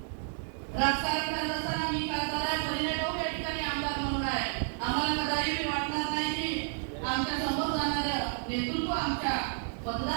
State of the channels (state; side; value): silent; left; digital silence